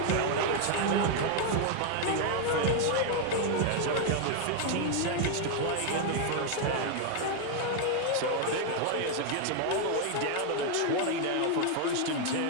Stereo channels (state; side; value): different; both; correlation 0.00